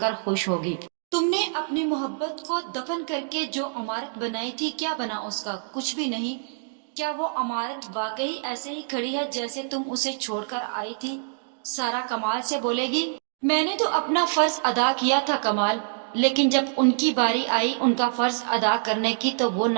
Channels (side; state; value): left; silent; digital silence